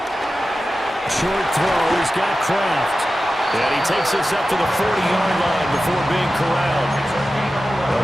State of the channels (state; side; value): normal; both; correlation 0.94